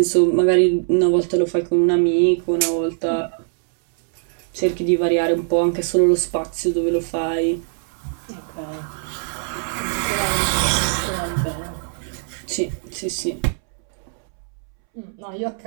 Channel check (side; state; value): left; silent; 65 dB below the other